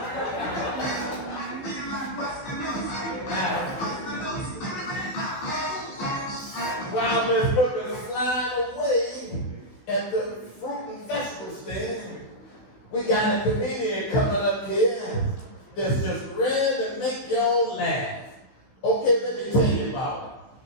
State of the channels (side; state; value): right; late; 15 ms